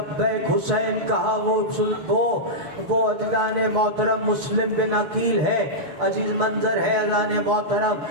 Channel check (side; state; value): left; late; 6.9 ms